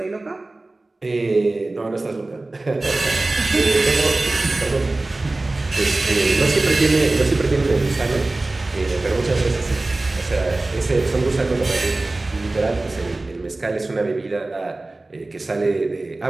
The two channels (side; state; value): left; quieter; 3.0 dB